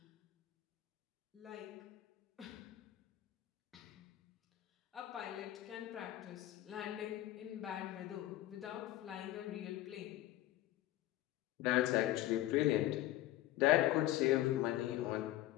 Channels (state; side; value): quieter; right; 15.2 dB